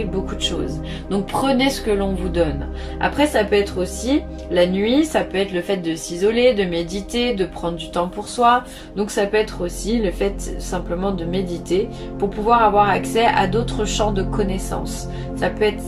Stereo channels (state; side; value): identical; both; correlation 1.00